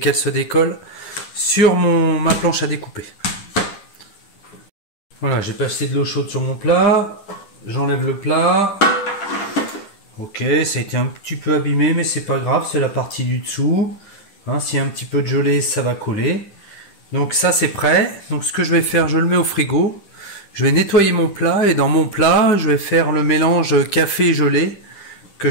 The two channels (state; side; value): late; right; 10 ms